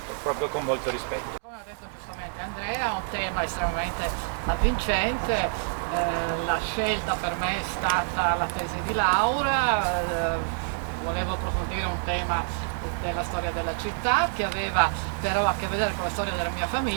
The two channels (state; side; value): silent; left; digital silence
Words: proprio con molto rispetto. Come ha detto giustamente Andrea, è un tema estremamente avvincente. La scelta per me è stata la tesi di laurea, volevo approfondire un tema della storia della città che aveva però a che vedere con la storia della mia